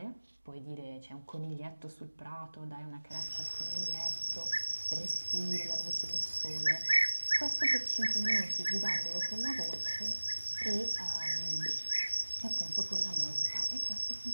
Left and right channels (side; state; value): both; inverted; correlation -1.00